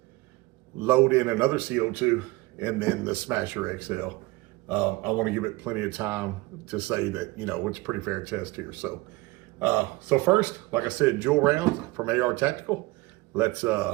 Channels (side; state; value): left; quieter; 21.8 dB